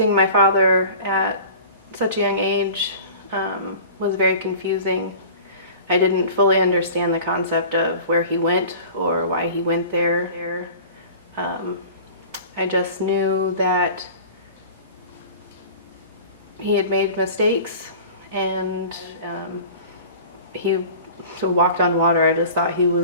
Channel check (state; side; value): inverted; both; correlation -0.41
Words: my father at such a young age was very confusing. I didn't fully understand the concept of where he went or why he went there. I just knew that he had made mistakes, and he walked on water. I just thought he